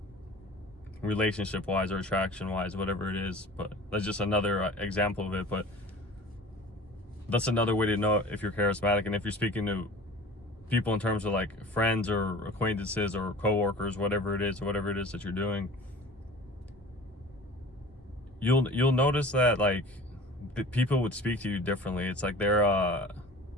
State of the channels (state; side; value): normal; both; correlation 0.41